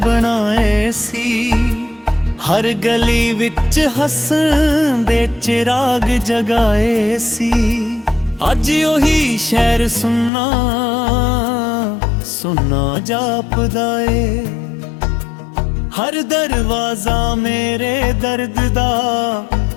ਸੀ। ਹਰ ਗਲੀ ਵਿੱਚ ਹੱਸਣ ਦੇ ਚਿਰਾਗ ਜਗਾਏ ਸੀ। ਅੱਜ ਉਹੀ ਸ਼ਹਿਰ ਸੁੰਨਾ ਸੁੰਨਾ ਜਾਪਦਾ ਏ। ਹਰ ਦਰਵਾਜ਼ਾ ਮੇਰੇ ਦਰਦ ਦਾ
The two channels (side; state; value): right; drops out; at 10.3 s